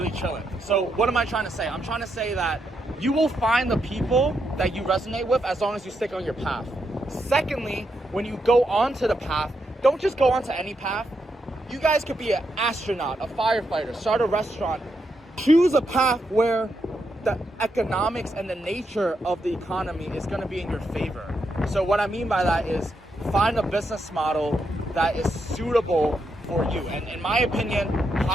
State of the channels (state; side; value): normal; both; correlation 0.81